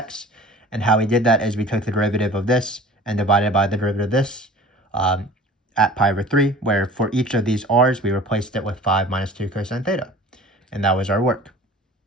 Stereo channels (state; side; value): normal; both; correlation 0.44